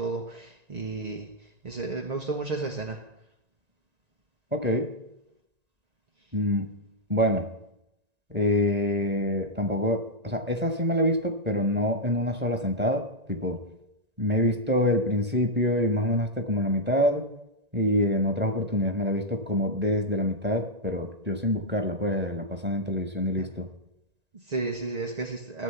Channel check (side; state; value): left; late; 1.9 ms